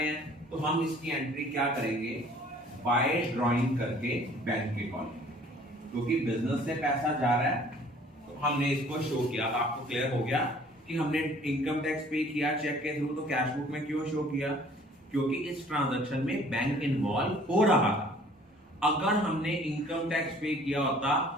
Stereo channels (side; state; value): both; normal; correlation 0.54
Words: हैं, तो हम इसकी एंट्री क्या करेंगे? बाय ड्राइंग करके बैंक के कॉलम, क्योंकि बिजनेस से पैसा जा रहा है तो हमने इसको शो किया। आपको क्लियर हो गया कि हमने इनकम टैक्स पे किया चेक के थ्रू, तो कैश बुक में क्यों शो किया? क्योंकि इस ट्रांजैक्शन में बैंक इन्वॉल्व हो रहा था। अगर हमने इनकम टैक्स पे किया होता